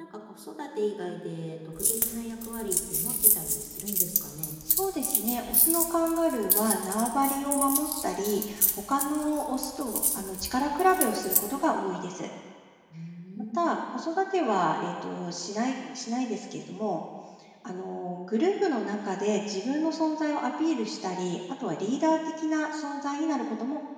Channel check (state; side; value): identical; both; correlation 1.00